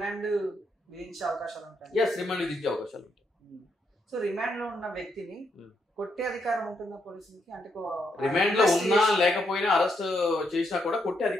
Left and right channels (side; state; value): both; normal; correlation 0.78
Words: విధించే అవకాశాలు ఉంటాయి. ఎస్, రిమాండ్ విధించే అవకాశాలు ఉంటాయి. సో రిమాండ్ లో ఉన్న వ్యక్తిని కొట్టే అధికారం ఉంటుందా పోలీసులకి? అంటే రిమాండ్ లో ఉన్నా లేకపోయినా అరెస్ట్ చేసినా కూడా కొట్టే